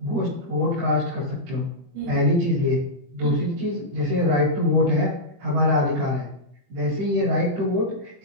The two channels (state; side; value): late; left; 23 ms